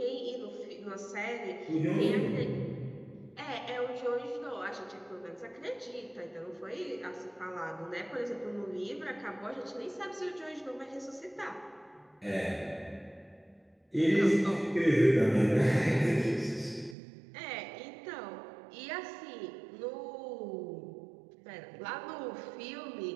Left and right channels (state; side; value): drops out; left; at 16.9 s